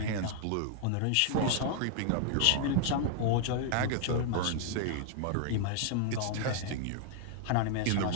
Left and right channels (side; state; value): both; different; correlation 0.00